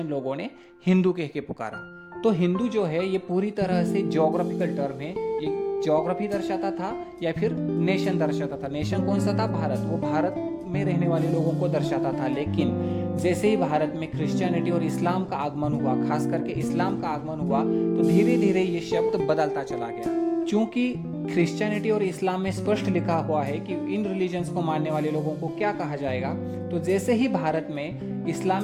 लोगों ने हिंदू कह के पुकारा। तो हिंदू जो है ये पूरी तरह से ज्योग्राफिकल टर्म है। ये ज्योग्राफी दर्शाता था या फिर नेशन दर्शाता था। नेशन कौन सा था? भारत। वो भारत में रहने वाले लोगों को दर्शाता था। लेकिन जैसे ही भारत में क्रिश्चियनिटी और इस्लाम का आगमन हुआ, खास करके इस्लाम का आगमन हुआ, तो धीरे धीरे ये शब्द बदलता चला गया। चूंकि क्रिश्चियनिटी और इस्लाम में स्पष्ट लिखा हुआ है कि इन रिलीजन्स को मानने वाले लोगों को क्या कहा जाएगा, तो जैसे ही भारत में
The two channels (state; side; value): identical; both; correlation 1.00